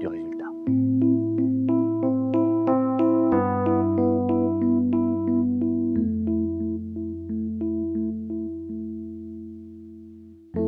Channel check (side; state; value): both; identical; correlation 1.00